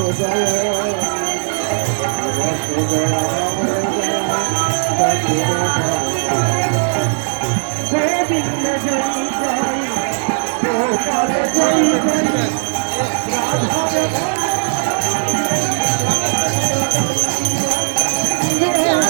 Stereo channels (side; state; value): left; silent; digital silence